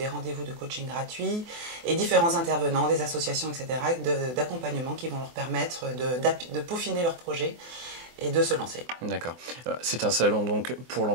rendez-vous de coaching gratuits et différents intervenants, des associations, etc. d'accompagnement qui vont leur permettre de peaufiner leur projet et de se lancer. D'accord. C'est un salon donc pour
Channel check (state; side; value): late; left; 24 ms